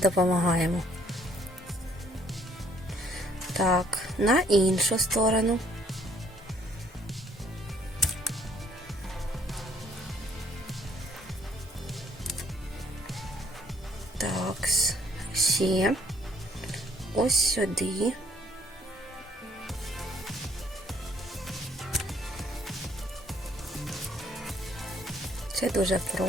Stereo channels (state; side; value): normal; both; correlation 0.63